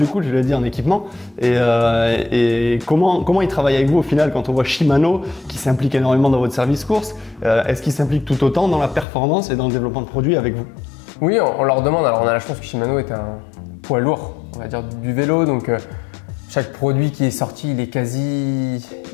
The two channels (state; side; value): drops out; right; at 9.1 s